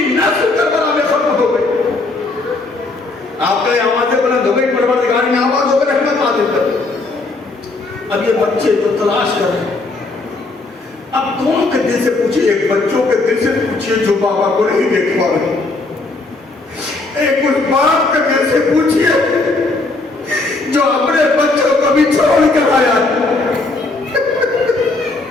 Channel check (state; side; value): quieter; right; 3.3 dB